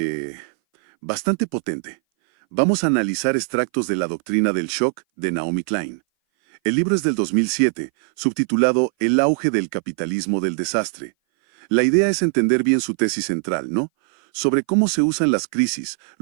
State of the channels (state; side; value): silent; left; 59 dB below the other